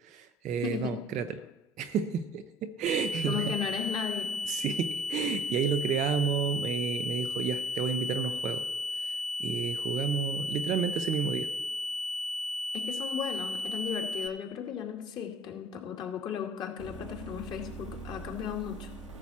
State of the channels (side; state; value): both; normal; correlation 0.55